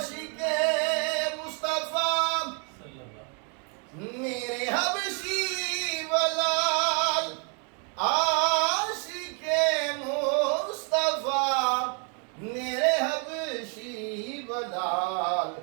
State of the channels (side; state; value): left; quieter; 38.2 dB